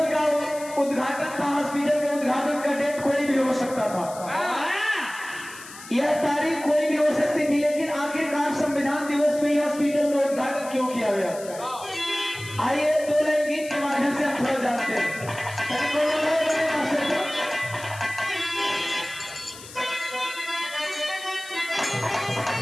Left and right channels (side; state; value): left; noise; hiss, 16 dB below the sound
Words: का उद्घाटन था। हॉस्पिटल के उद्घाटन का डेट कोई भी हो सकता था, यह तारीख कोई भी हो सकती थी, लेकिन आखिरकार संविधान दिवस में हॉस्पिटल का उद्घाटन क्यों किया गया। आइए दो लाइन गीत के माध्यम से हम थोड़ा जानते हैं।